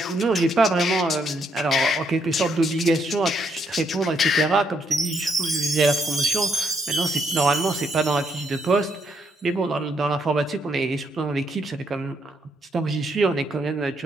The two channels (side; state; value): both; normal; correlation 0.74